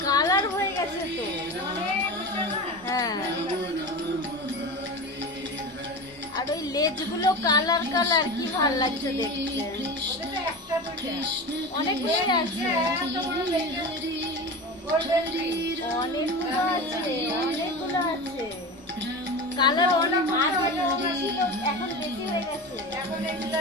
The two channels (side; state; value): both; normal; correlation 0.28